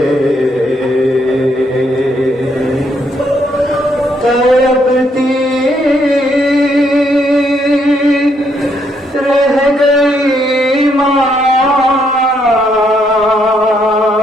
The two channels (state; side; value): normal; both; correlation 0.73